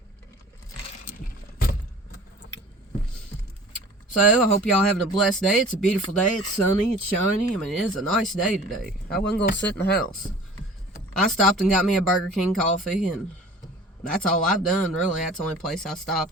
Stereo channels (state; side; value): normal; both; correlation 0.45